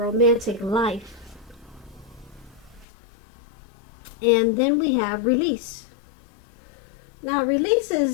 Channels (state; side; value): drops out; right; at 2.9 s